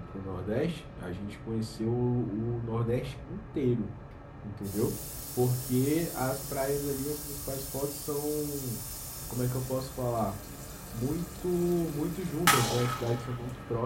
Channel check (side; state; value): both; identical; correlation 1.00